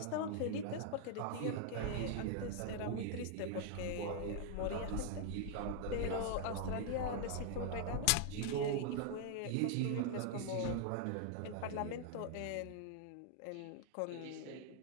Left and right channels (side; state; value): both; different; correlation 0.00